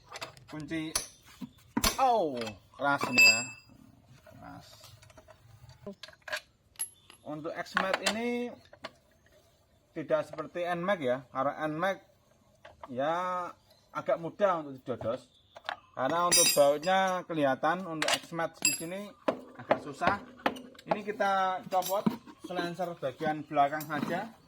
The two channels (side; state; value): both; identical; correlation 1.00